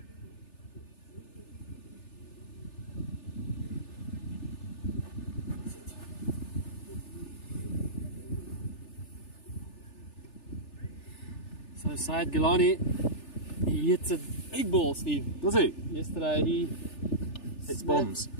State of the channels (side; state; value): right; late; 3.4 ms